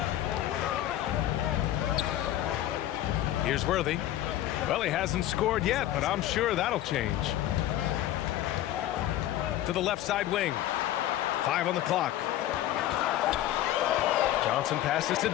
Here's Worthy. Well, he hasn't scored yet, but I'm sure that'll change. To the left side wing. 5 on the clock. Johnson passes to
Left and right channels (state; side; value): quieter; right; 13.3 dB